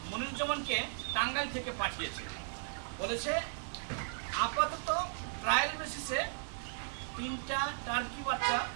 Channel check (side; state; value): left; silent; digital silence